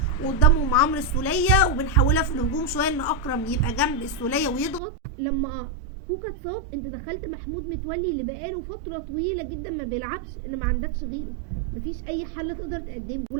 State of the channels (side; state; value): left; drops out; at 4.8 s